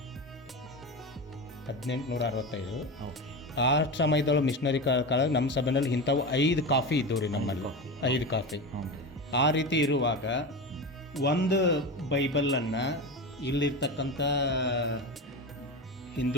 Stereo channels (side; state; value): both; normal; correlation 0.22